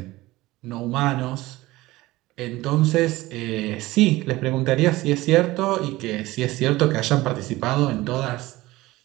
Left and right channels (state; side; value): quieter; left; 18.7 dB